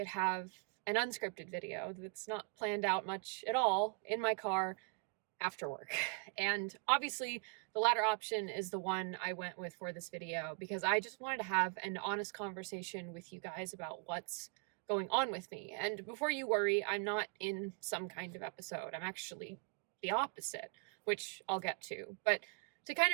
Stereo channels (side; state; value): left; quieter; 36.3 dB